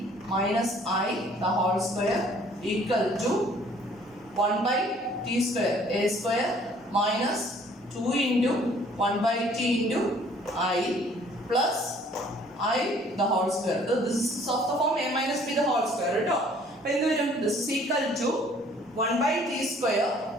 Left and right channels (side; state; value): both; normal; correlation 0.57